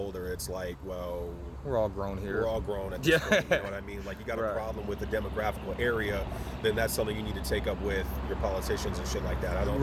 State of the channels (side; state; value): both; identical; correlation 1.00